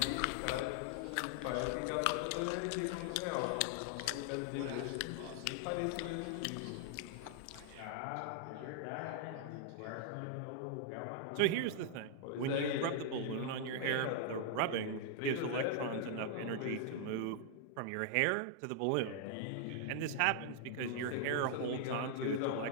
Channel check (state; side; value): different; both; correlation 0.00